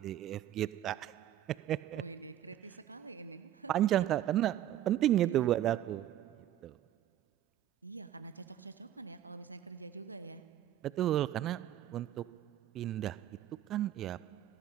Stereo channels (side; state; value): left; quieter; 12.2 dB